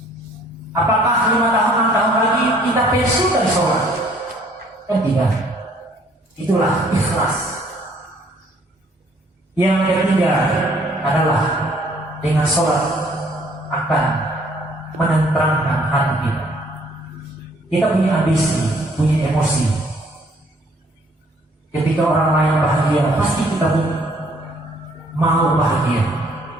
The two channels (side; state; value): both; normal; correlation 0.61